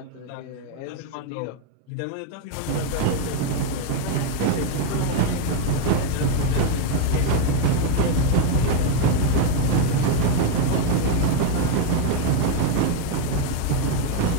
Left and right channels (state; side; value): different; both; correlation 0.01